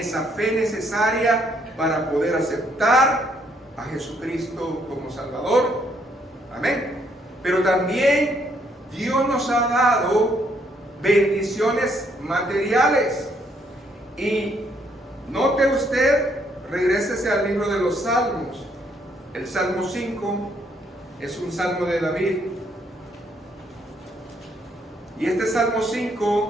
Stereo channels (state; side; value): normal; both; correlation 0.70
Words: fe necesaria para poder aceptar a Jesucristo como Salvador. Amén. Pero también Dios nos ha dado bendiciones materiales. Y note usted, regrésese al libro de los Salmos. El Salmo 5 es un salmo de David. Y este Salmo